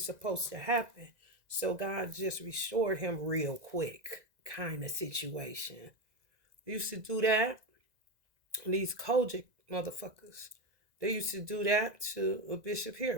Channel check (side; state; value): left; late; 2.0 ms